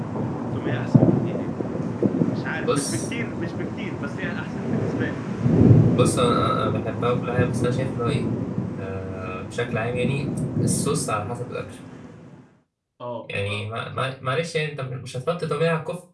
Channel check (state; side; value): identical; both; correlation 1.00